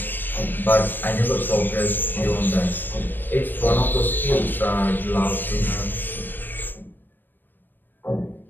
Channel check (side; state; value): right; late; 0.093 ms